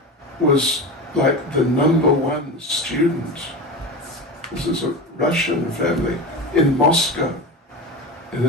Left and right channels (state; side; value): normal; both; correlation 0.25